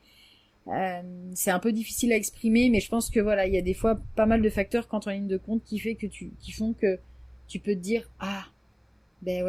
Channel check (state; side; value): identical; both; correlation 1.00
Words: c'est un peu difficile à exprimer, mais je pense que voilà, il y a des fois pas mal de facteurs quand on ligne de compte qui font que tu peux te dire